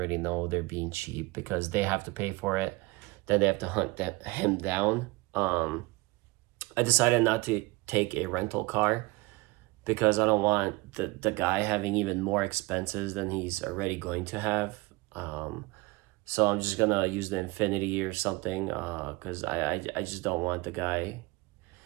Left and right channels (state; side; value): quieter; left; 23.7 dB